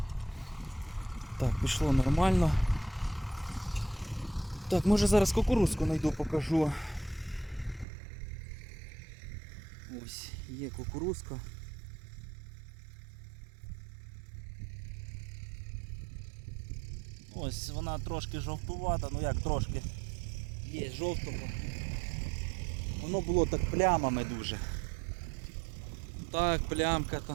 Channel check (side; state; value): left; drops out; at 7.9 s